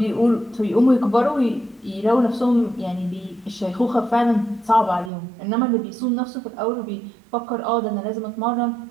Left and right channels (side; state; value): left; drops out; at 5.1 s